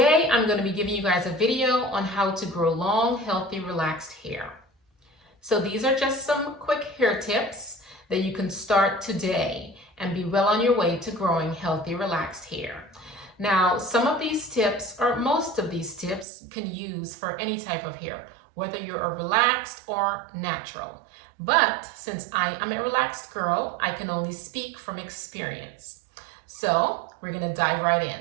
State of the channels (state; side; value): drops out; left; at 16.2 s